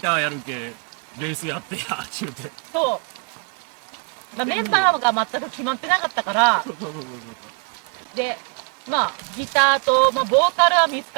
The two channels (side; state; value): left; quieter; 37.8 dB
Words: ーやるけ、ベースやってや、ちゅうて。そう、まあ、メンバーが全く決まってなかったから、そう。でまあギターと、まあ、ボーカルは見つ